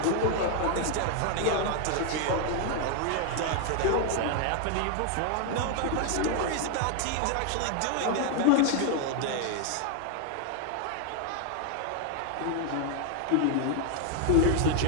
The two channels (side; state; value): both; different; correlation 0.00